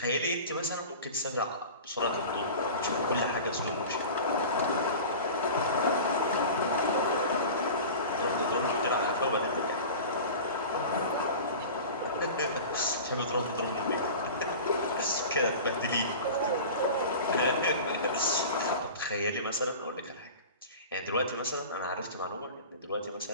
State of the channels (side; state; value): both; inverted; correlation -0.35